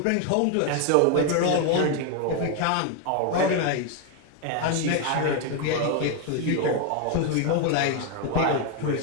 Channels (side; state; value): both; different; correlation 0.01